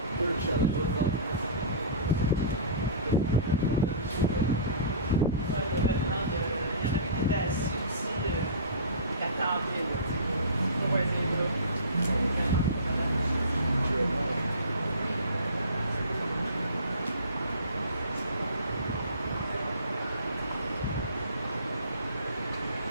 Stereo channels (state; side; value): inverted; both; correlation -0.37